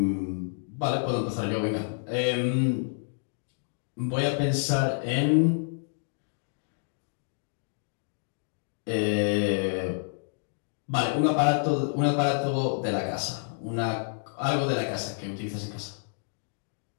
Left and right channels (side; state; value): right; silent; digital silence